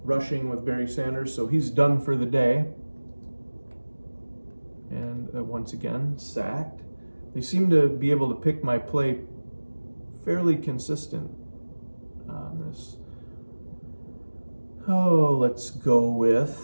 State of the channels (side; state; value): both; inverted; correlation -1.00